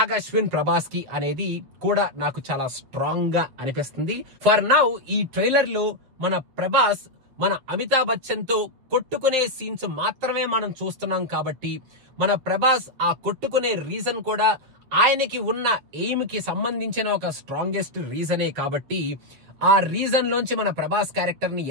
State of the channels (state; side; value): late; left; 8.0 ms